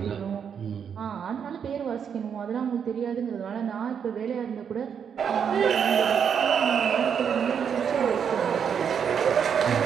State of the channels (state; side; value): quieter; left; 7.5 dB